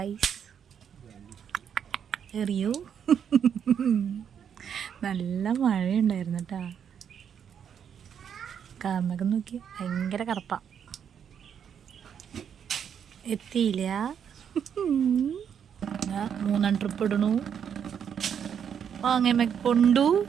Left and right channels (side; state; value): left; quieter; 8.1 dB